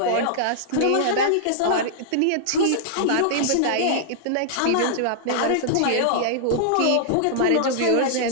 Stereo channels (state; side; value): different; both; correlation -0.01